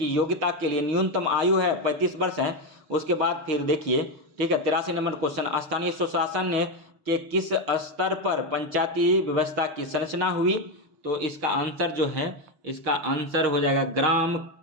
योग्यता के लिए न्यूनतम आयु है 35 वर्ष है। उसके बाद फिर देखिए, ठीक है, 83 नंबर क्वेश्चन, स्थानीय स्वशासन के किस स्तर पर पंचायती व्यवस्था की संरचना हुई? तो इसका आंसर जो है, इसका आंसर हो जाएगा ग्राम,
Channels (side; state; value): left; late; 6.7 ms